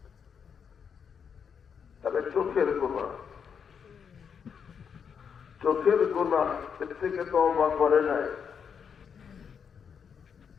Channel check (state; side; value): quieter; right; 6.9 dB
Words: তাহলে চোখের গুনাহ, চোখের গুনাহ এর থেকে তওবা করে নাই,